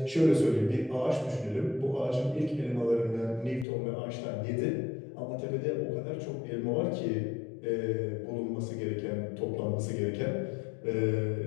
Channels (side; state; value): right; drops out; at 3.7 s